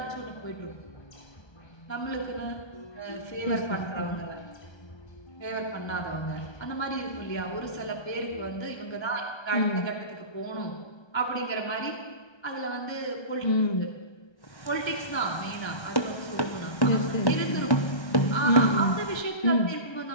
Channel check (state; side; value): late; right; 1.3 ms